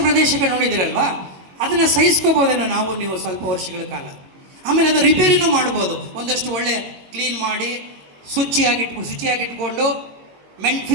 ಪ್ರದೇಶಗಳು ನೋಡಿದಿರಲ್ವಾ, ಅದನ್ನು ಸಹಿಸ್ಕೋಬೋದೇನೋ ನಾವು ನೀವು ಸ್ವಲ್ಪ ವರ್ಷಗಳ ಕಾಲ. ಆಮೇಲೆ ಅದು ರಿಪೇರಿನೂ ಮಾಡ್ಬೋದು, ಒಂದಷ್ಟು ಒಳ್ಳೆ ಕ್ಲೀನ್ ಮಾಡಿ ಶುಚಿಯಾಗಿಟ್ಕೊಂಡು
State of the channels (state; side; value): late; left; 22 ms